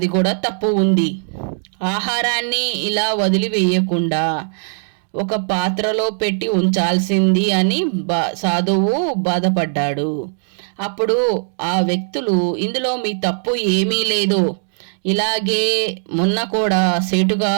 కూడా తప్పు ఉంది. ఆహారాన్ని ఇలా వదిలివేయకుండా ఒక పాత్రలో పెట్టి ఉంచాల్సింది అని సాధువు బాధపడ్డాడు. అప్పుడు ఆ వ్యక్తులు, ఇందులో మీ తప్పు ఏమీ లేదు, ఇలాగే మొన్న కూడా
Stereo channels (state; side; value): silent; left; 66 dB below the other